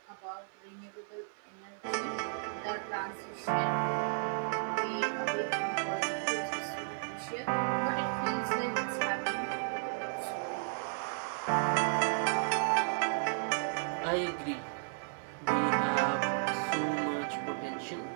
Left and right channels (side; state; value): left; silent; digital silence